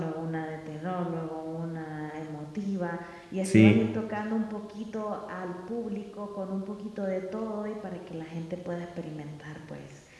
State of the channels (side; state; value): both; identical; correlation 1.00